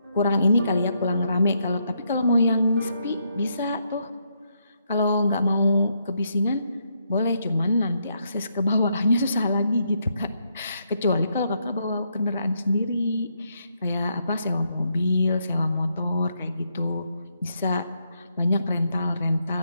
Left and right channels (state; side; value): inverted; both; correlation -0.77